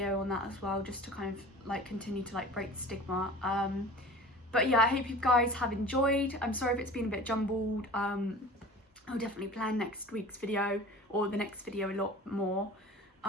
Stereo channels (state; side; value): normal; both; correlation 0.39